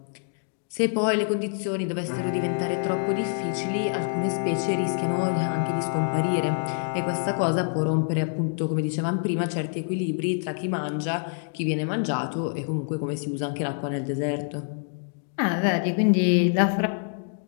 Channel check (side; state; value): right; silent; 61 dB below the other